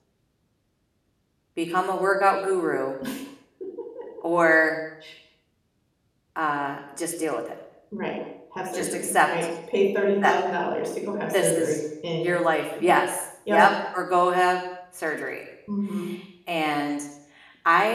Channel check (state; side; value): identical; both; correlation 1.00